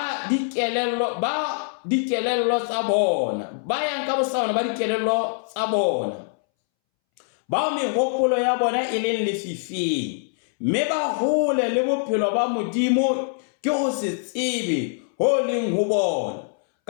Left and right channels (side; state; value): right; silent; 63 dB below the other